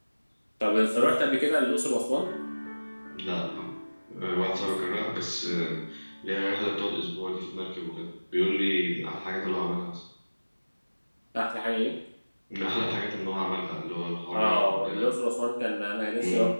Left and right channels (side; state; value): both; inverted; correlation -1.00